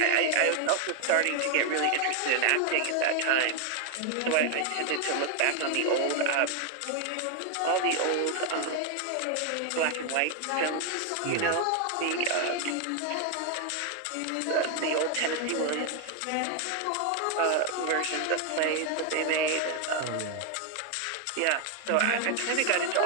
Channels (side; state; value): both; different; correlation 0.01